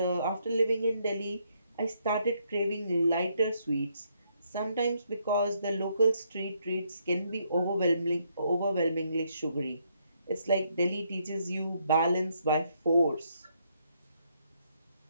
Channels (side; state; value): both; inverted; correlation -0.73